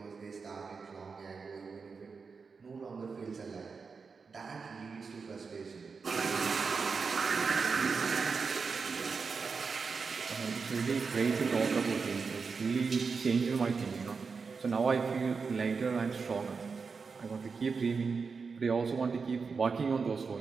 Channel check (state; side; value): quieter; left; 5.1 dB